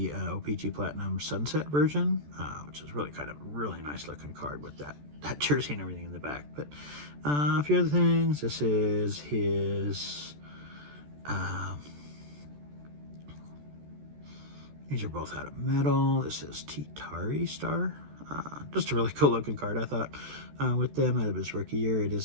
OPG Platinum Sunset version, which is really nice looking card with that jersey and everything in the back. But a few other things. This is his... these are both out of metal. This is Titari Star. Just a really cool looking card, I thought, with them out of his rookie year. It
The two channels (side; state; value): left; late; 14 ms